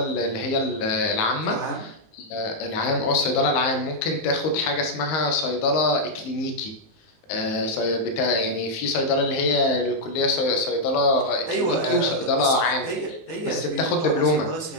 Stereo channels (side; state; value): right; late; 19 ms